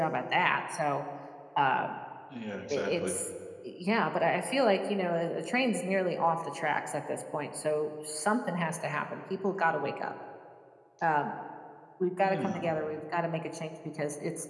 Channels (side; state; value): both; identical; correlation 1.00